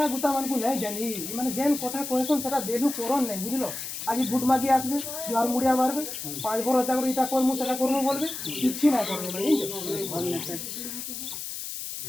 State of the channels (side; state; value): left; noise; hiss, 7 dB below the sound